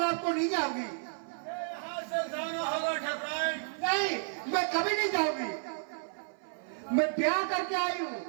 आपको नहीं जाऊंगी। यहाँ से जाना होगा ठकराइन। नहीं, मैं कभी नहीं जाऊंगी। मैं ब्याह करके आई हूँ,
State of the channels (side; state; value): left; silent; 56 dB below the other